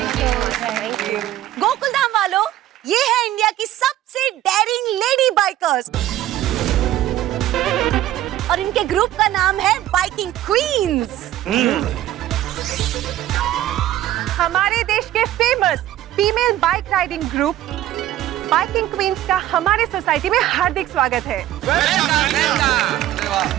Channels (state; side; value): quieter; left; 13.6 dB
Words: Gokuldham वालों, ये है इंडिया की सबसे डेयरिंग लेडी बाइकर्स और इनके ग्रुप का नाम है बाइकिंग क्वींस। हमारे देश के famous female bike riding group biking queens का हमारे सोसाइटी में हार्दिक स्वागत है।